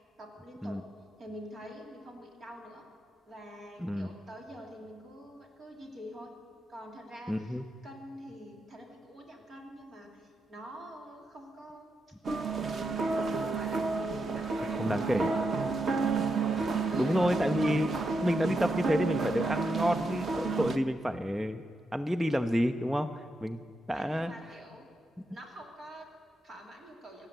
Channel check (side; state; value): both; normal; correlation 0.85